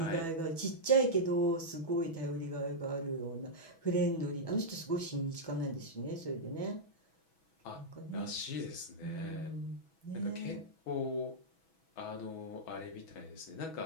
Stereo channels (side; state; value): right; late; 6.1 ms